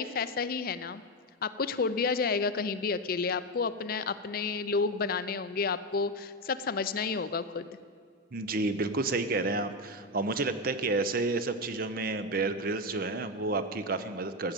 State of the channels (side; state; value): both; normal; correlation 0.11